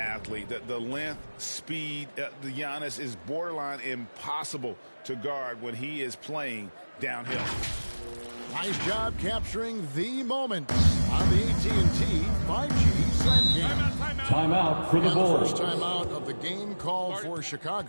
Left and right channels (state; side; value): inverted; both; correlation -1.00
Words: The length, speed, the Giannis is borderline impossible to guard when he is playing downhill. Nice job capturing the moment on the AT&T 5G Slam Game. Timeout for the And the Bulls. first timeout of the game called for